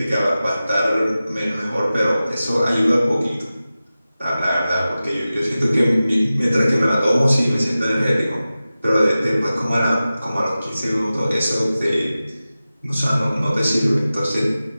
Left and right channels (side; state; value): both; inverted; correlation -0.95